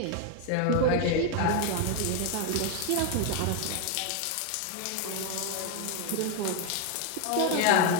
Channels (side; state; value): both; different; correlation 0.01